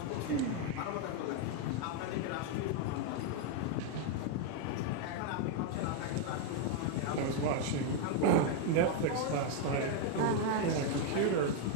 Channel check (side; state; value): both; different; correlation 0.00